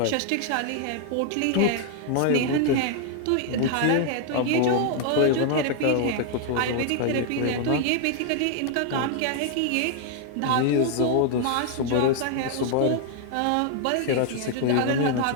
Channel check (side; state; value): both; different; correlation 0.00